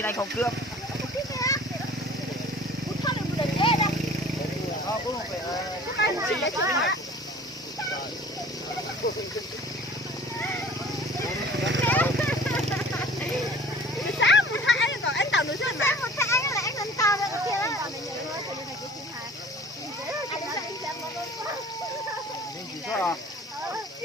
anh không cướp.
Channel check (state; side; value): normal; both; correlation 0.47